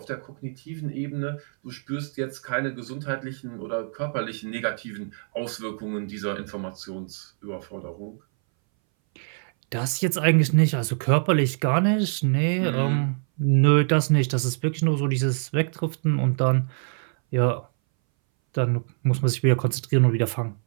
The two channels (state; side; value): silent; left; 61 dB below the other